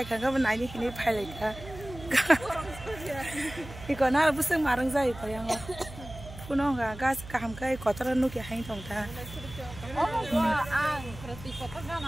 ka banai ni hini phailajak. Iko na buseng marang jai ko yang puno enggak gas kaham kai kotor nugi hain tong ta.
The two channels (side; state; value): right; noise; hum, 14 dB below the sound